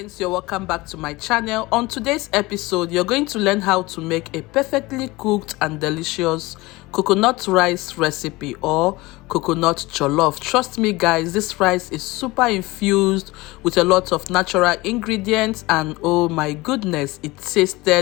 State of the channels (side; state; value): right; quieter; 21.3 dB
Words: you're welcome back to my channel. On today's episode, you're going to learn how to make a perfectly cooked and delicious coconut rice recipe or coconut jollof. Trust me guys, this rice is super infused with a lot of natural ingredients and oh my goodness, it